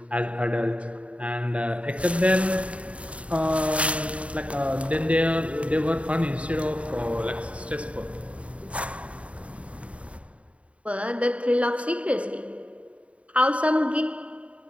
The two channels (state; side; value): late; left; 0.064 ms